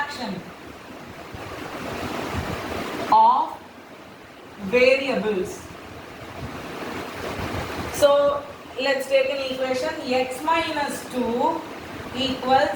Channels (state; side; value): identical; both; correlation 1.00